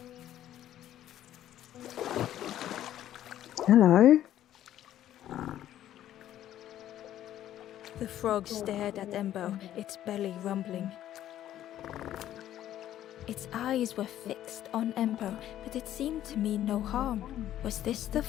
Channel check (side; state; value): right; quieter; 12.1 dB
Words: Hello. The frog stared at Ember, its belly rumbling. Its eyes were fixed on Ember, but it seemed to mean no harm. Was this the